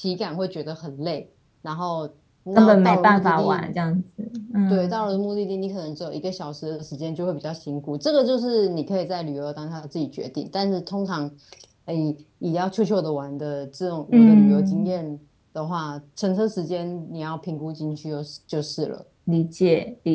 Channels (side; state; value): both; identical; correlation 1.00